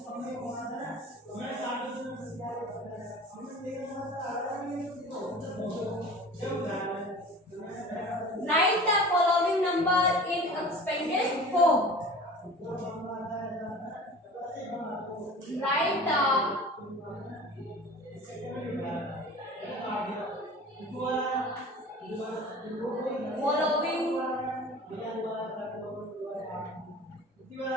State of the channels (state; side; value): normal; both; correlation 0.40